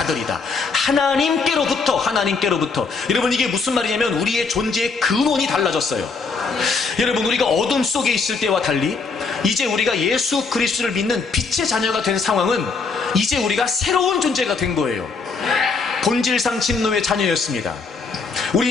하나님께로부터. 여러분, 이게 무슨 말이냐면 우리의 존재의 근원이 달라졌어요. 여러분, 우리가 어둠 속에 있을 때와 달리 이제 우리가 예수 그리스도를 믿는 빛의 자녀가 된 상황은 이제 우리가 새로운 존재가 된 거예요. 본질상 진노의 자녀였습니다.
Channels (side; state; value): right; quieter; 4.6 dB